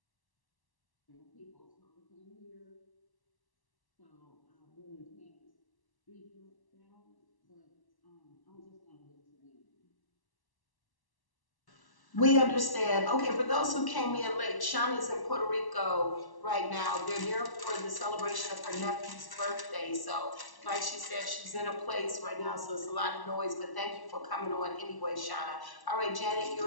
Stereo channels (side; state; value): right; late; 1.1 ms